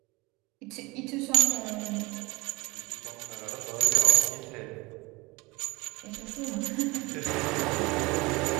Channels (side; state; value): left; quieter; 24.1 dB